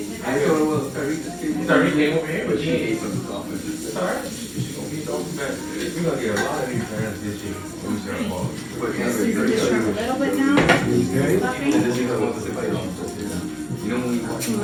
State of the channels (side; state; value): both; identical; correlation 1.00